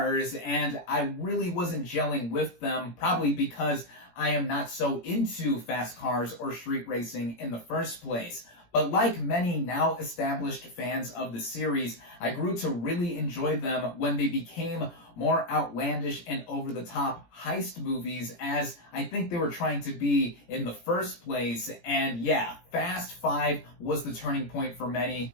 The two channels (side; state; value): right; late; 17 ms